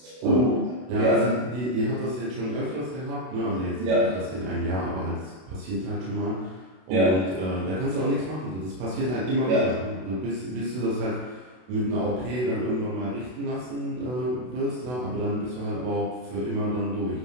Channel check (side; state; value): left; late; 32 ms